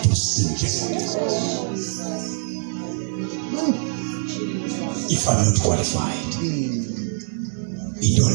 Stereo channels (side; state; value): left; silent; 63 dB below the other